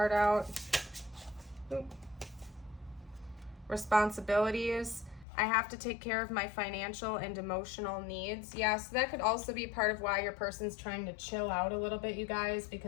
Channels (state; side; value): drops out; right; at 5.2 s